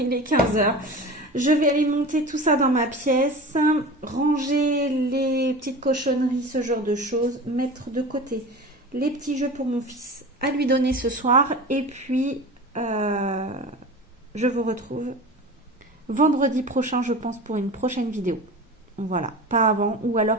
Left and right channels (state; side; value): normal; both; correlation 0.33